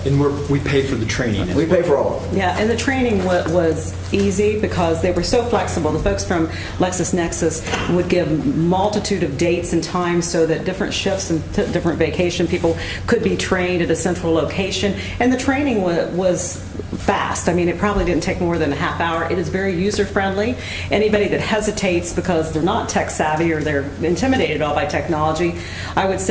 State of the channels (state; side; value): identical; both; correlation 1.00